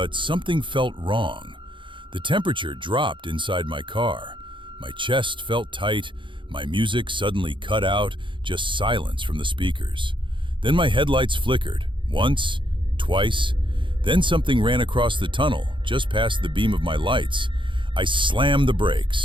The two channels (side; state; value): left; late; 0.24 ms